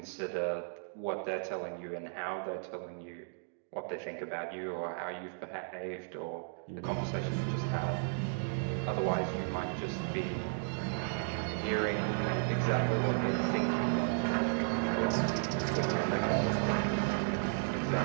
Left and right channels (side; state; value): left; silent; digital silence